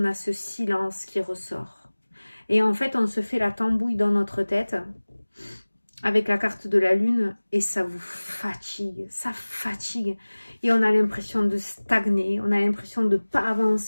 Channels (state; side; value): inverted; both; correlation -1.00